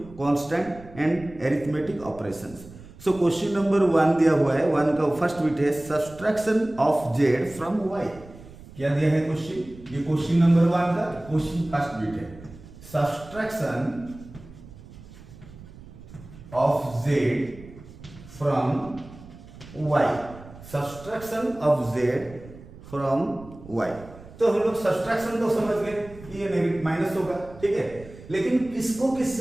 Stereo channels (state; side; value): noise; right; rumble, 18 dB below the sound